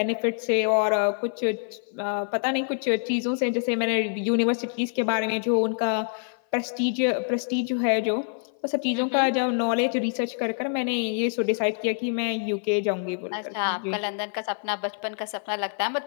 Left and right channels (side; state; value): right; silent; 56 dB below the other